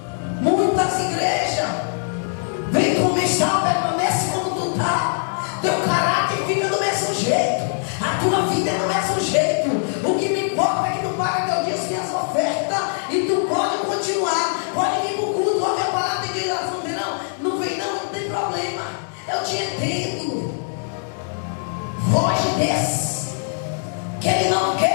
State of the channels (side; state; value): right; silent; 62 dB below the other